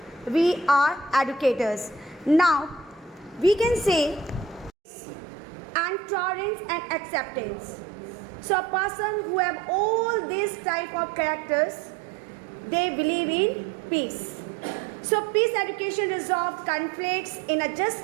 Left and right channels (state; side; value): drops out; left; at 4.7 s